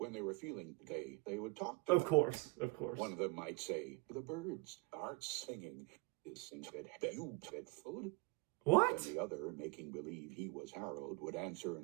they were feeling gay, they would talk to Of them. course, of course. One of them might say, the birds are singing. You fed food? What? Then the other, making believe he was Harold, would answer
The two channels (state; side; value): quieter; left; 24.9 dB